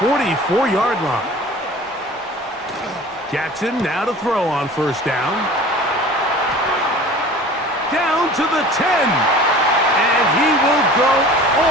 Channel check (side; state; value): both; normal; correlation 0.42